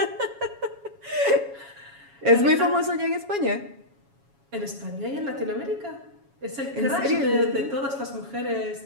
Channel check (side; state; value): left; late; 7.2 ms